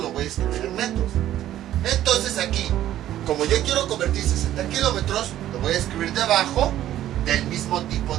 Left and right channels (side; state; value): left; quieter; 12.7 dB